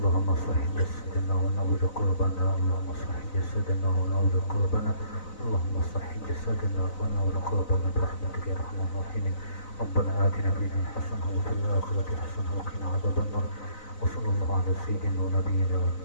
صح جسدنا ونور قلوبنا. اللهم صح جسدنا ونور قلوبنا. اللهم صح جسدنا ونور قلوبنا برحمتك يا ارحم الراحمين. ربنا آتنا في الدنيا حسنة وفي الآخرة حسنة وقنا عذاب النار. وصلى الله على سيدنا ونبينا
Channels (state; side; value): late; right; 4.0 ms